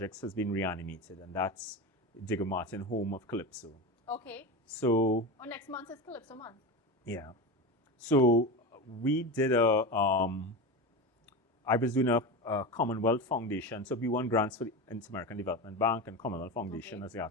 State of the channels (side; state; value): both; normal; correlation 0.22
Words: has been reanimated, and that's Digger Martin, home of Calypso. Okay. So... Oh, next month is Calypso month. Yeah. So we did I was doing a Commonwealth Foundation. So we won grants for the Inter-American Development Bank and Commonwealth Foundation as the